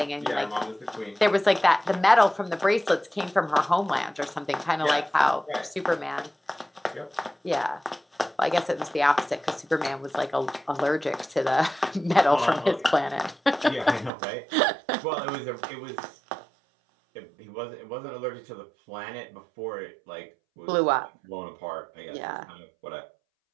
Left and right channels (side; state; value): left; drops out; at 14.1 s